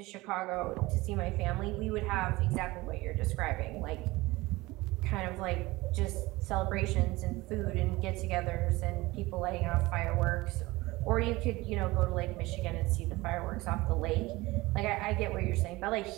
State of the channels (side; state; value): left; quieter; 20.6 dB